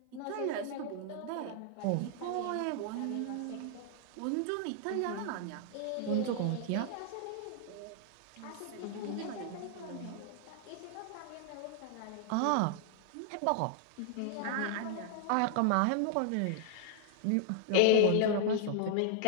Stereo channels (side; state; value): both; different; correlation 0.00